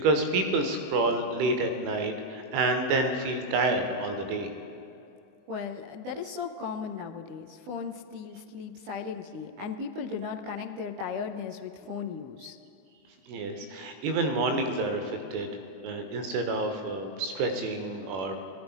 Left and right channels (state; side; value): late; left; 21 ms